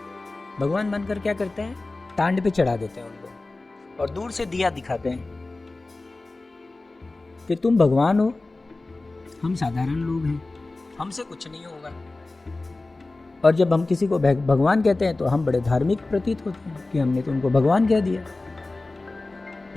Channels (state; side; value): quieter; right; 3.2 dB